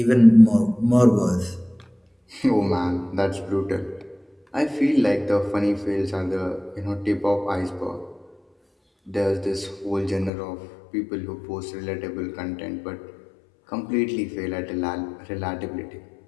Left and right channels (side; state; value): right; drops out; at 10.3 s